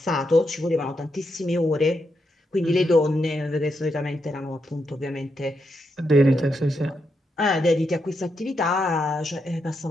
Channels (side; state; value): both; normal; correlation 0.82